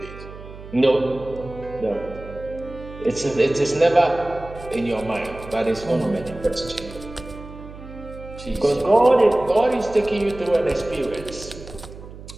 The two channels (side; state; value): right; noise; hum, 15 dB below the sound